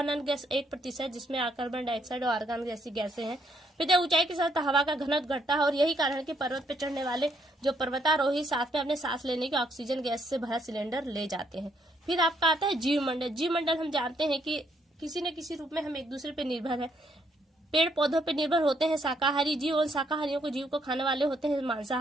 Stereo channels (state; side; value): normal; both; correlation 0.72